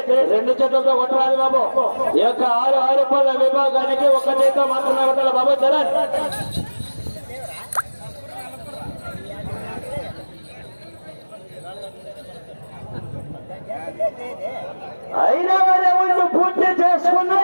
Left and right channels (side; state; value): both; inverted; correlation -1.00